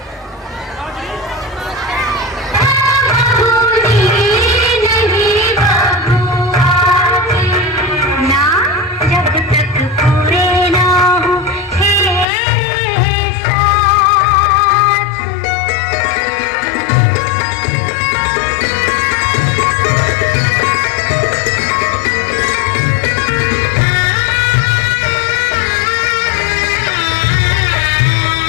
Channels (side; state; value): right; drops out; at 12.2 s